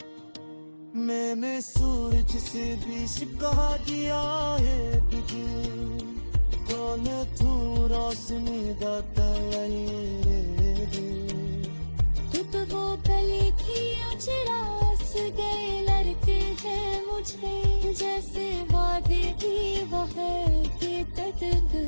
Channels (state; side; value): inverted; both; correlation -1.00